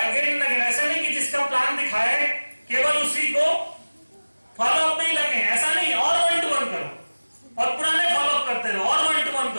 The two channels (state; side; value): inverted; both; correlation -1.00